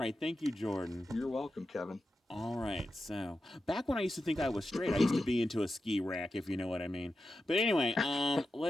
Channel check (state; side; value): normal; both; correlation 0.90